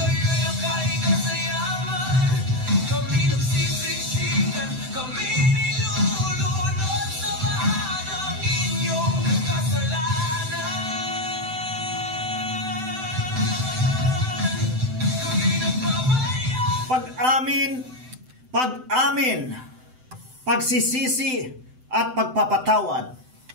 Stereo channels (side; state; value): left; late; 7.8 ms